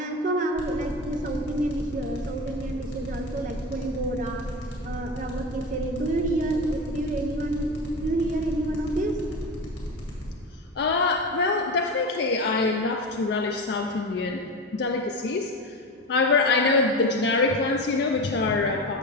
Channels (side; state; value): both; normal; correlation 0.24